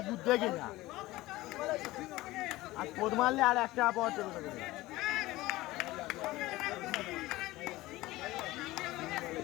দুধ দেখে যা আর কোদ মারলে আর একটা পাওয়া চলে যাবে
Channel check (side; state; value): right; quieter; 18.4 dB